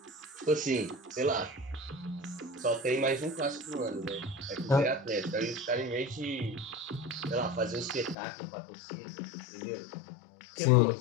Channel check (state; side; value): drops out; right; at 8.2 s